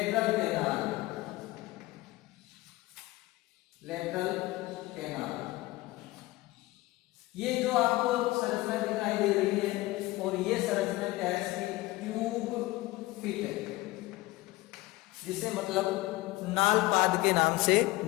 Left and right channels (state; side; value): quieter; right; 19.1 dB